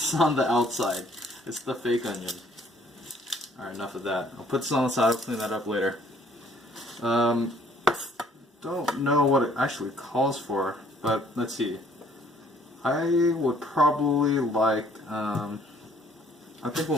on the outside. It's the fake onion. Alright, enough of that. I'll put this on the side, I'll clean that up later. Don't know what it actually calls for, but let's see. I would probably like, I think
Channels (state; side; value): normal; both; correlation 0.60